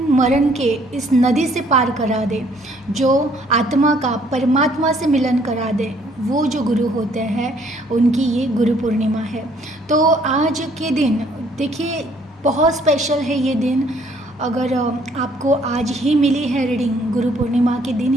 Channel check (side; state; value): both; normal; correlation 0.63